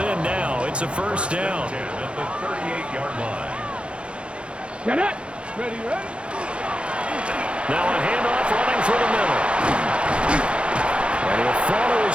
in now. It's a first down. At the 38-yard line. Get it. Ready, ready. Now a handoff running for the middle. And he'll follow his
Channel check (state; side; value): late; left; 0.058 ms